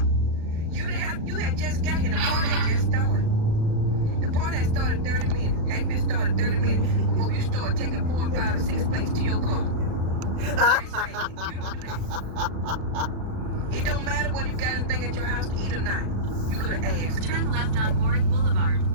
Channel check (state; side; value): late; left; 36 ms